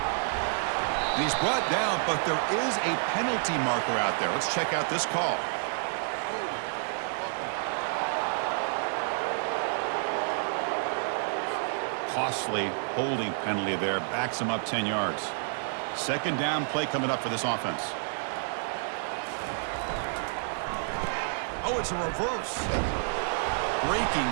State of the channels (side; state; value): left; silent; digital silence